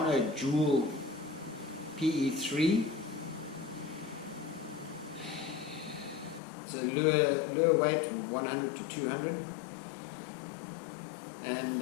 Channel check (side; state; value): right; drops out; at 6.4 s